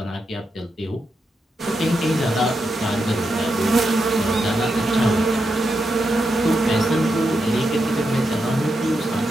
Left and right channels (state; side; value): normal; both; correlation 0.85